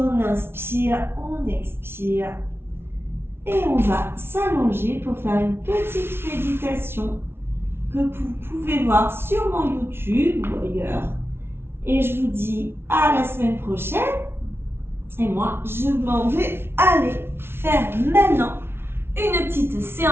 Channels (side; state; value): left; late; 0.12 ms